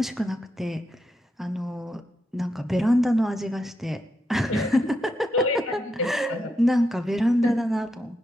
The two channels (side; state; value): both; normal; correlation 0.84